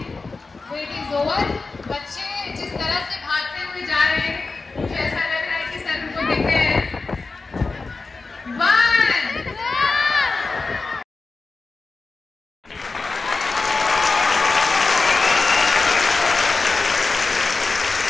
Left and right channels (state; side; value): quieter; right; 3.9 dB